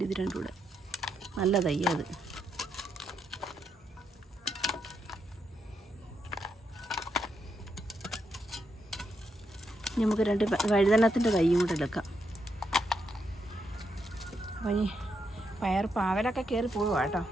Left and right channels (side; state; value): both; normal; correlation 0.81